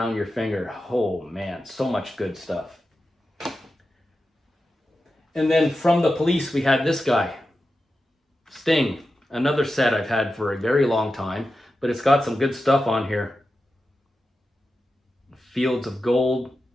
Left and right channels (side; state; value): both; normal; correlation 0.91